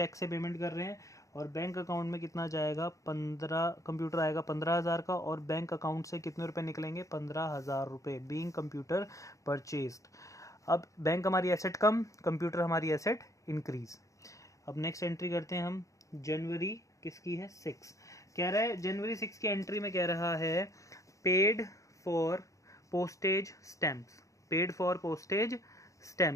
से पेमेंट कर रहे हैं। और बैंक अकाउंट में कितना जाएगा, 15, कंप्यूटर आएगा 15,000 का, और बैंक अकाउंट से कितने रुपए निकलेंगे, 15,000 रुपये, बीइंग कंप्यूटर परचेज्ड। अब बैंक हमारी एसेट कम, कंप्यूटर हमारी एसेट इंक्रीज। अब नेक्स्ट एंट्री करते हैं हम, जनवरी किसकी है, 6। कह रहा है जनवरी 6 की एंट्री में कह रहा है paid for postage stamps, paid for postage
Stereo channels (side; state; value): right; late; 0.16 ms